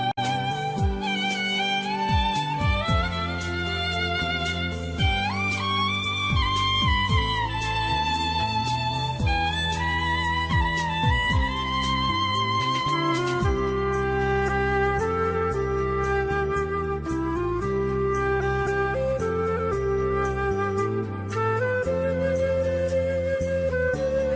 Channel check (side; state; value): both; identical; correlation 1.00